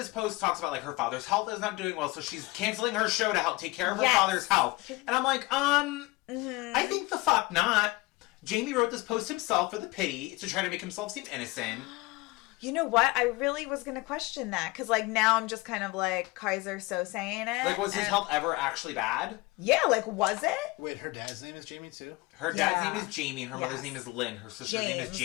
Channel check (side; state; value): right; quieter; 22.7 dB